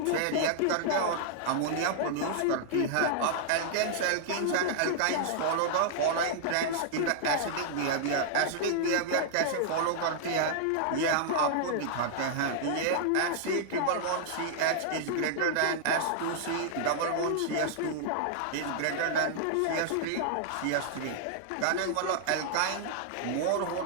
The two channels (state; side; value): different; both; correlation -0.01